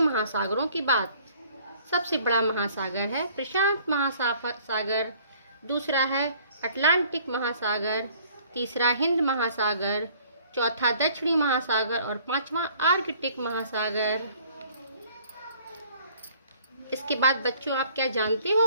की बात। सबसे बड़ा महासागर है प्रशांत महासागर, दूसरा है अटलांटिक महासागर, तीसरा हिंद महासागर, चौथा दक्षिणी महासागर और पांचवा आर्कटिक महासागर। इसके बाद बच्चों आप क्या जानते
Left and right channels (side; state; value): both; inverted; correlation -0.56